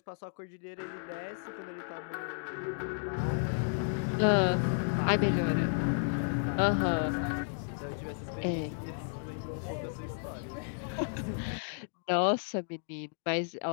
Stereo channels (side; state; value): right; silent; digital silence